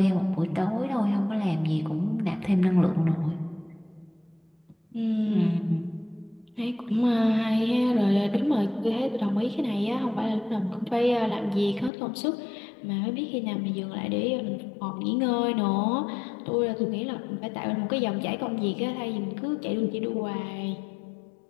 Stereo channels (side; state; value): right; drops out; at 11.9 s